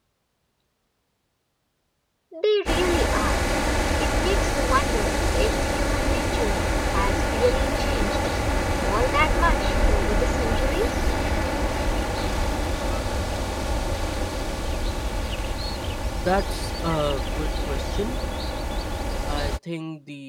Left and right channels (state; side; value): identical; both; correlation 1.00